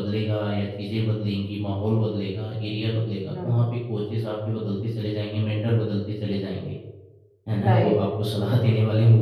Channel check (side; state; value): both; identical; correlation 1.00